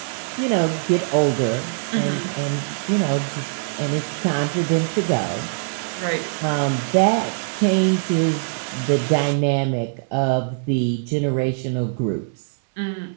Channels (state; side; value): silent; left; digital silence